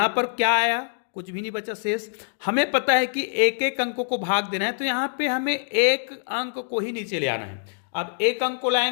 पर क्या आया, कुछ भी नहीं बचा शेष। हमें पता है कि एक एक अंकों को भाग देना है, तो यहां पे हमें एक अंक को ही नीचे ले आना है। अब एक अंक को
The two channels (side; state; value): right; silent; digital silence